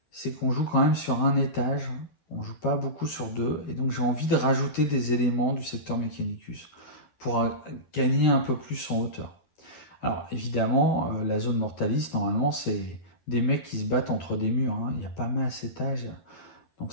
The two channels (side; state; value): right; late; 11 ms